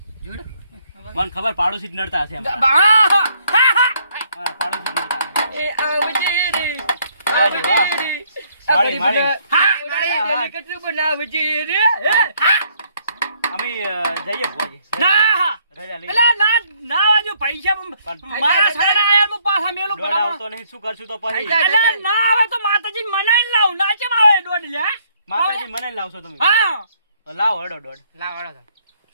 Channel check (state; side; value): inverted; both; correlation -0.67